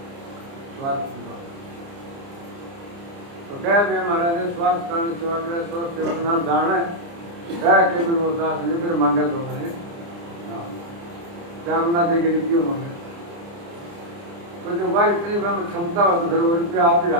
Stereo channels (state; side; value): late; left; 29 ms